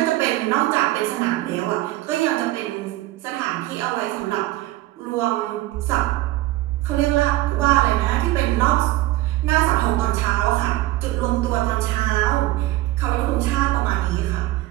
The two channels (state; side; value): quieter; left; 16.8 dB